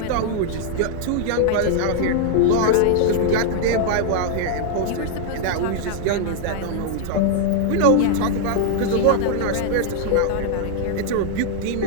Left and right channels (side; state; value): both; different; correlation -0.01